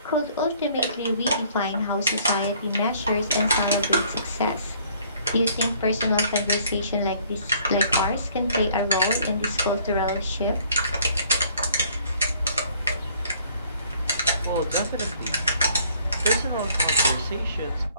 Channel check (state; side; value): inverted; both; correlation -0.60